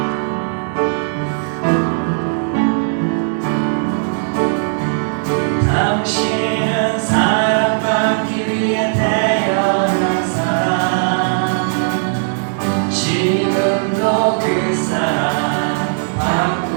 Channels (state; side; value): silent; left; 68 dB below the other